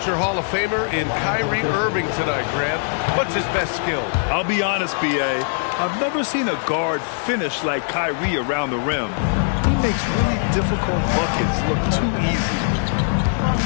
Hall of Famer in Kyrie Irving tonight, Grant. What's his best skill? I'll be honest, B.A. I've never seen a guard finish like Kyrie around the rim. He makes really difficult buckets look too easy.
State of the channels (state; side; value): silent; right; digital silence